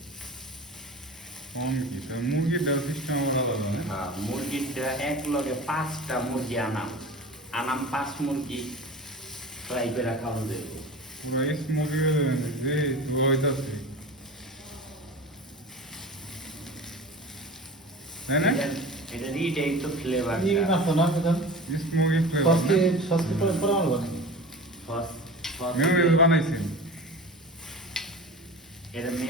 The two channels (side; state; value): both; normal; correlation 0.35